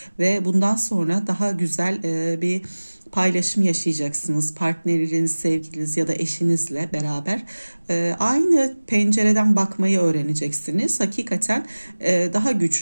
ve bundan sonra daha güzel bir paylaşım yaşayacaksınız. Partneriniz, sevgiliniz ya da eşinizle beraber aynı pencereden bakmayı öğreneceksiniz. Hakikaten daha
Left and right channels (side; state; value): both; inverted; correlation -1.00